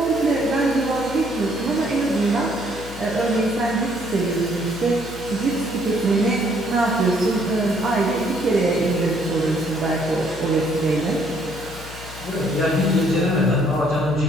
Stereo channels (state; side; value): noise; left; hum, 15 dB below the sound